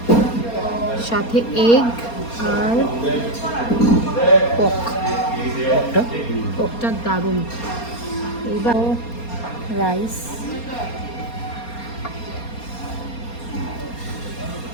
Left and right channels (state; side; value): late; right; 4.3 ms